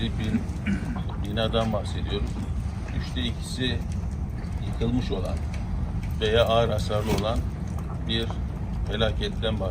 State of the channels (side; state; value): both; identical; correlation 1.00